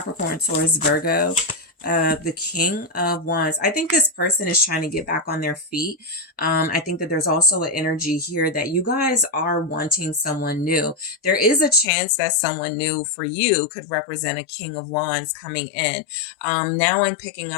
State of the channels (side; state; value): right; drops out; at 11.9 s